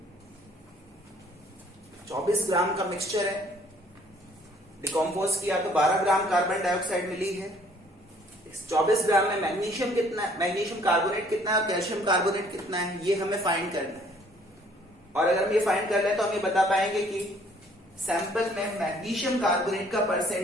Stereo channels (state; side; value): normal; both; correlation 0.60